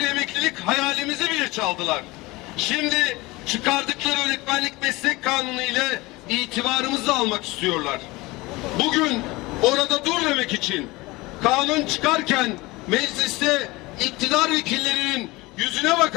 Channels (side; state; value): right; quieter; 21.9 dB